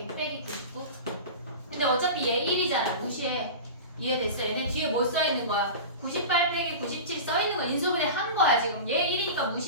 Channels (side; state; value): both; inverted; correlation -0.30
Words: 빼기 99. 근데 어차피 얘 1이잖아. 무시해. 이해됐어? 얘네 뒤에 뭐 써있는 거야? 98 빼기 97 써있는 거 인수분해 한 거야 지금. 얘 1이니까